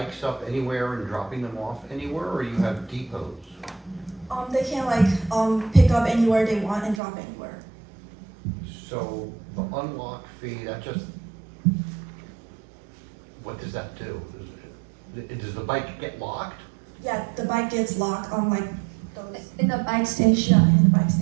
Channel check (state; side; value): drops out; left; at 7.0 s